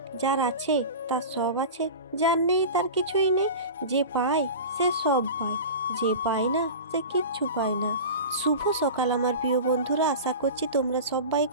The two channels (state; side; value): inverted; both; correlation -0.30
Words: যার আছে তার সব আছে, যার নেই তার কিছুই নেই। যে পায় সে সব পায়, যে পায় না সে কিচ্ছু পায় না। শুভ সকাল আমার প্রিয় বন্ধুরা, আশা করছি তোমরা সবাই